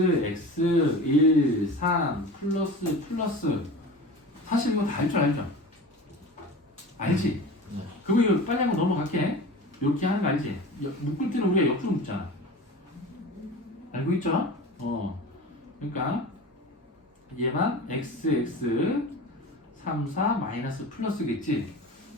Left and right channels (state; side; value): normal; both; correlation 0.34